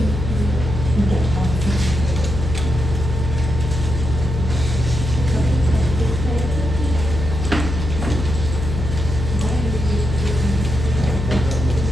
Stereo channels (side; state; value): left; noise; hum, 4 dB below the sound